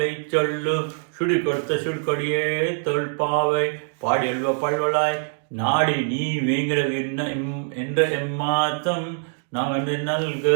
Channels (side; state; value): left; silent; 63 dB below the other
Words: சொல்லு சுடி கொடுத்த சுடுகொடியே தொல்பாவை பாடியல்வ பல்வலாய் நாடி நீ வேங்கிற என்ற ఎమ్మాతం నాగండి నల్గ.